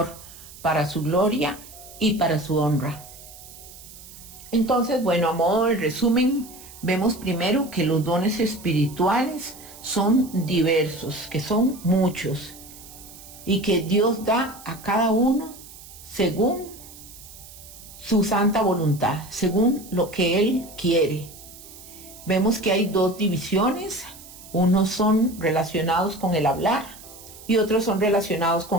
para su gloria y para su honra. Entonces, bueno, a modo de resumen, vemos primero que los dones espirituales son diversos, que son muchos, y que Dios da a cada uno según su santa voluntad, según lo que Él quiere. Vemos que hay dos divisiones, unos son relacionados con el hablar y otros son relacionados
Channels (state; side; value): noise; right; hiss, 18 dB below the sound